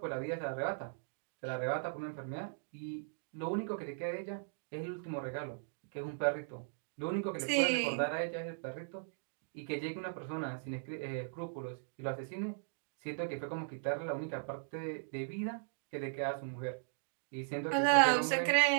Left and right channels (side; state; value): left; silent; digital silence